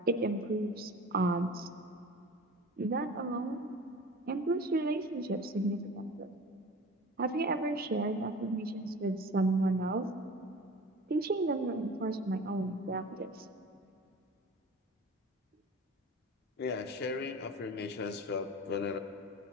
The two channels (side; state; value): both; normal; correlation 0.38